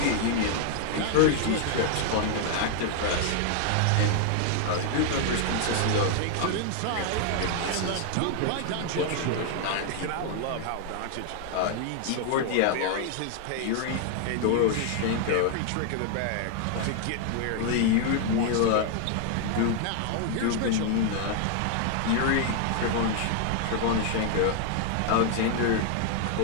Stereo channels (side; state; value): both; different; correlation 0.00